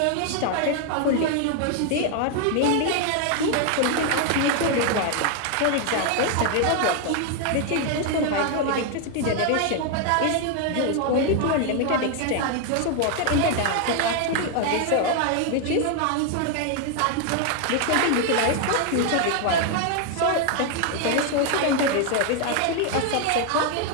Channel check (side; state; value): both; different; correlation 0.00